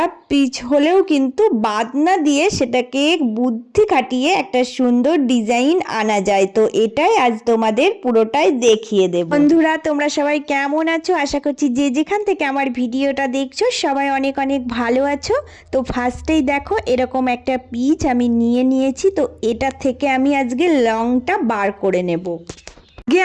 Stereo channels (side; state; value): both; identical; correlation 1.00